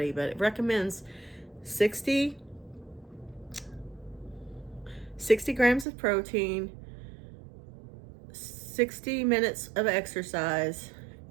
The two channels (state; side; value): drops out; left; at 5.9 s